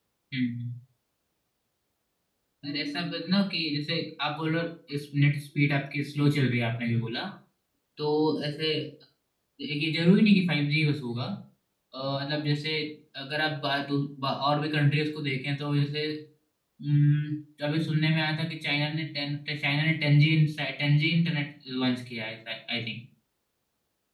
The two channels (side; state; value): both; identical; correlation 1.00